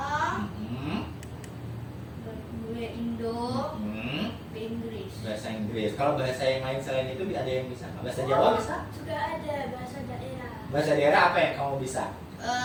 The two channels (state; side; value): identical; both; correlation 1.00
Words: Indo, Inggris. Bahasa Inggris. Kalau bahasa yang lain selain itu ada yang bisa nggak? Bahasa Jawa bisa? Sudah ada bahasa daerah. Bahasa daerah apa yang kamu bisa?